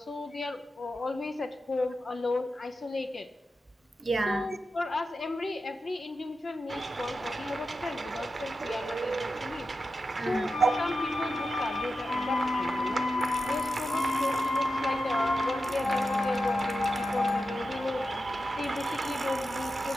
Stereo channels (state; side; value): normal; both; correlation 0.90